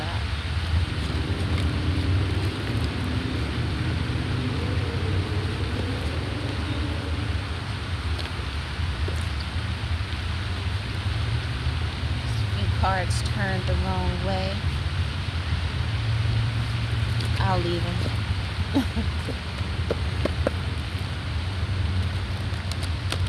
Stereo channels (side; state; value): both; identical; correlation 1.00